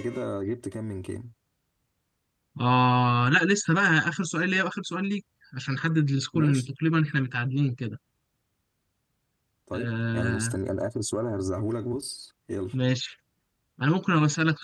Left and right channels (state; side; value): identical; both; correlation 1.00